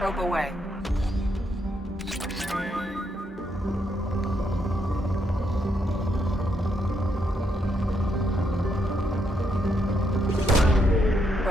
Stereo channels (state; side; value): normal; both; correlation 0.77